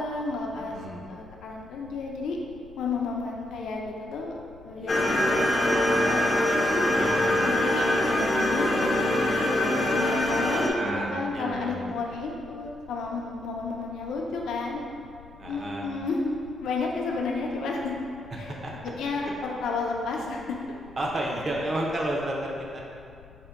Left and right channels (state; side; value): noise; left; rumble, 22 dB below the sound